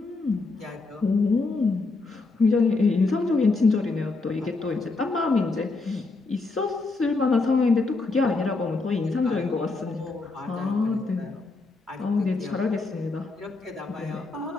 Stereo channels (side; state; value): right; quieter; 3.6 dB